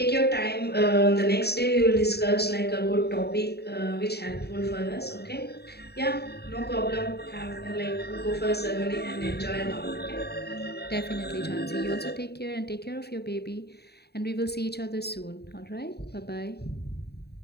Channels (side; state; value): right; late; 0.47 ms